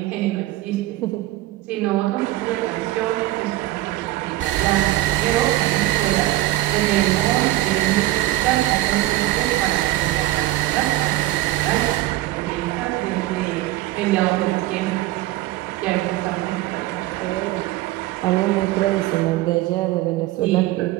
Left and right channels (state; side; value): quieter; left; 16.6 dB